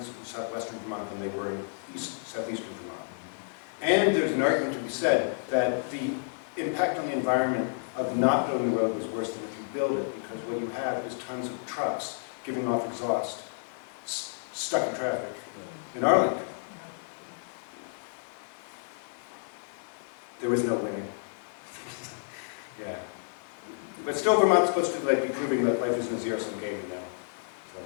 in southwestern Vermont than they were in southeastern Vermont. And there's an argument to be said that the impact on the environment of not building the road was worse than if you build it, because what you have is tons of trucks giving off exhaust, stuck in traffic in Arlington. There was no winning. Yeah. But still, Vermont's supposed to be proving that life isn't a zero-sum game,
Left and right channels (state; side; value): silent; right; digital silence